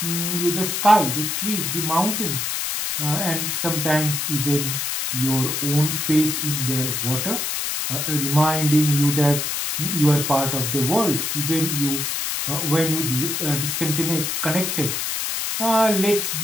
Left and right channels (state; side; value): noise; left; hiss, 1 dB below the sound